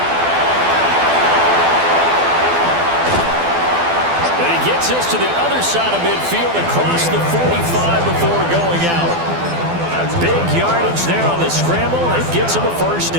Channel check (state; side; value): late; left; 12 ms